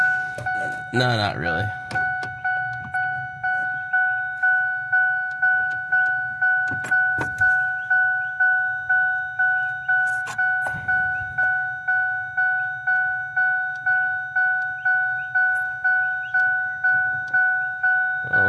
No, not really. Well,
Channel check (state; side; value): identical; both; correlation 1.00